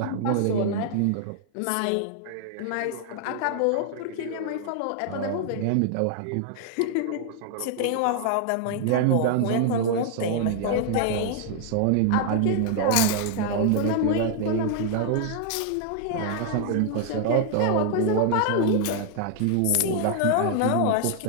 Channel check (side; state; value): both; different; correlation 0.00